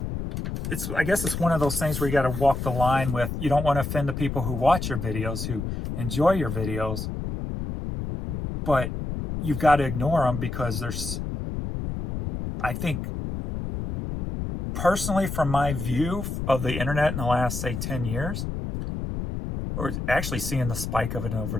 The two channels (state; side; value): noise; left; rumble, 4 dB below the sound